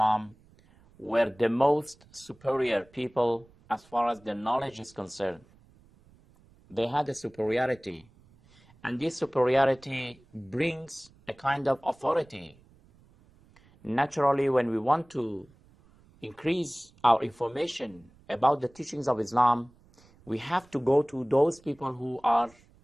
were the most superior people as far as their knowledge is concerned. They had a superiority, and this superiority brings a kind of authority. Naturally, when we want to increase our information about the teachings of Islam, we have to go to those people who are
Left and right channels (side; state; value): right; noise; rumble, 28 dB below the sound